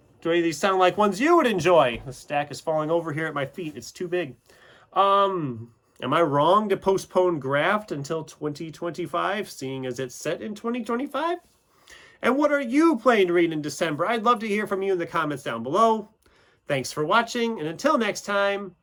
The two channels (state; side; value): identical; both; correlation 1.00